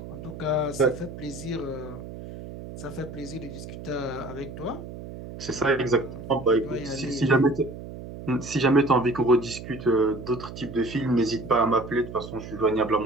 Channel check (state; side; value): noise; right; hum, 11 dB below the sound